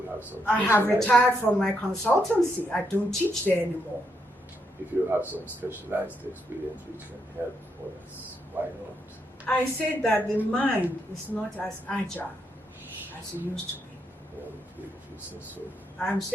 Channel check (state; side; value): normal; both; correlation 0.79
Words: have some... I have retired from my consultancy. I don't teach there anymore. If you have some specialized experience which can help others, why not? I said that the mind is not as agile as it used to be. Well, if you say so. I'm